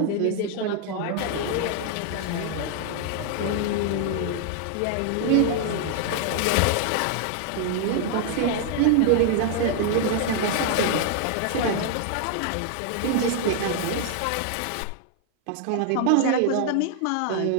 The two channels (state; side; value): different; both; correlation 0.00